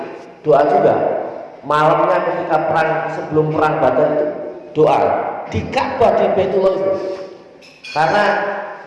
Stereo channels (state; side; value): identical; both; correlation 1.00